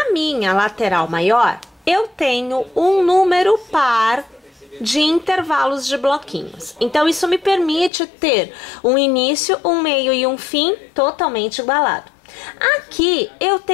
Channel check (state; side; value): drops out; right; at 7.9 s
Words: minha lateral maior, eu tenho um número par de intervalos de bloquinhos. Então, isso me permite ter um início, um meio e um fim totalmente igualado. Aqui eu